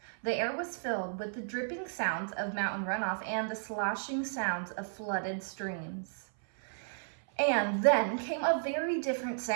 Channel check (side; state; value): left; silent; 55 dB below the other